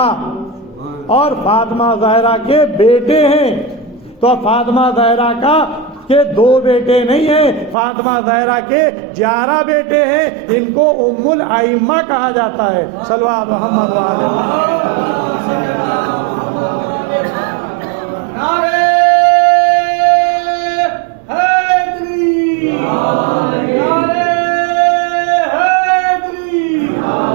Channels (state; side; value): drops out; left; at 7.8 s